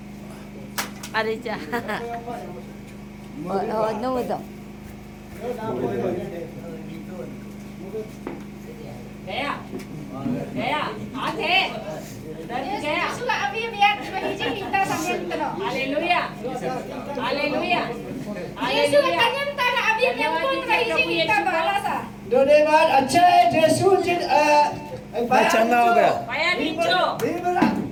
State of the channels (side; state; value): both; identical; correlation 1.00